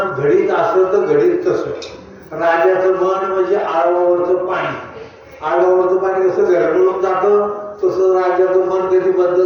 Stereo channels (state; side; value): identical; both; correlation 1.00